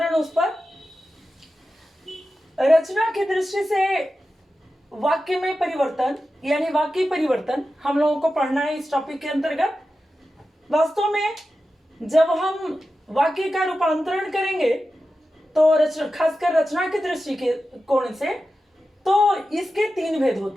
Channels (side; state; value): both; normal; correlation 0.92